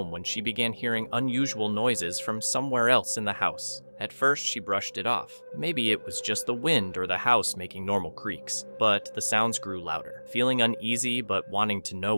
when she began hearing unusual noises from somewhere else in the house. At first, she brushed it off. Maybe it was just the wind or the house making normal creaks. But the sounds grew louder. Feeling uneasy but wanting to know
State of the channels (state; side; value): inverted; both; correlation -1.00